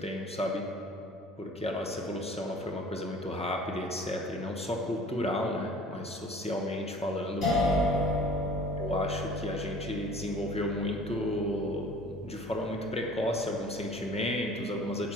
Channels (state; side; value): normal; both; correlation 0.48